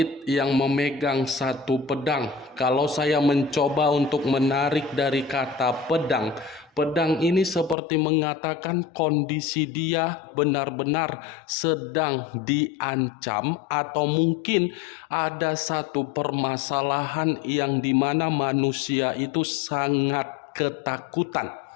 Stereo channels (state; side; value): drops out; right; at 7.8 s